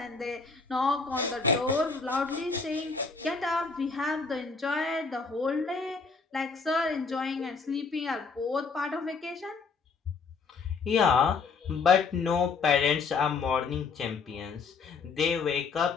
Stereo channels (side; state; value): right; quieter; 4.8 dB